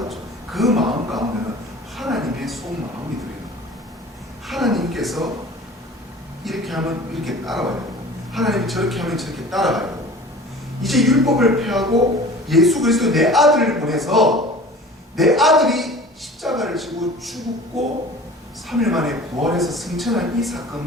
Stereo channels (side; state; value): both; normal; correlation 0.42